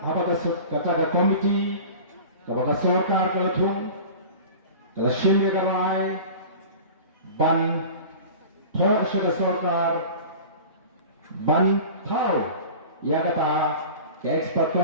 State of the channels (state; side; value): inverted; both; correlation -0.37